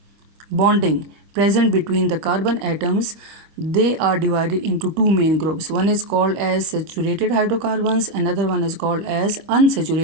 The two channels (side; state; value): left; late; 25 ms